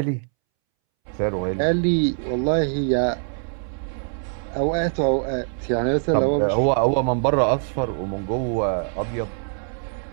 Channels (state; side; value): silent; left; 63 dB below the other